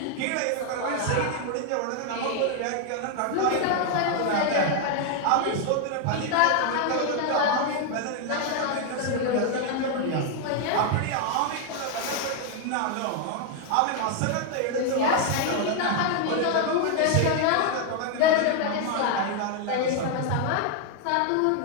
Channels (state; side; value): different; both; correlation 0.01